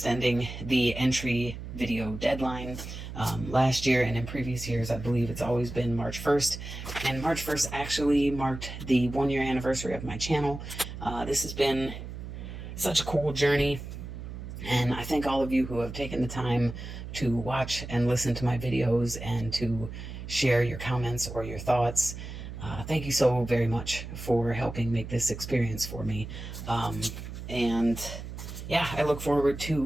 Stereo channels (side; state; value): right; noise; hum, 9 dB below the sound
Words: the entry video deadline. Last year and in previous years, I believe it's always been March 1st, and March 1st actually marked the 1-year anniversary of my channel. This has been such a cool journey. And I thank all of you who have taken the time to watch and listen to my videos and to share your comments or your thoughts. Thank you so very much for helping make this experience for me. And yeah, I look forward